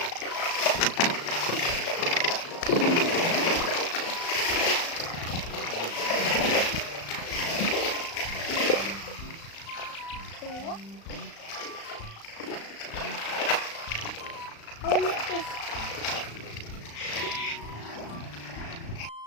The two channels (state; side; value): late; right; 35 ms